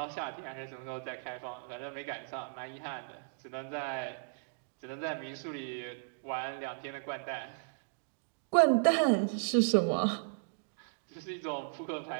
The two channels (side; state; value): left; silent; digital silence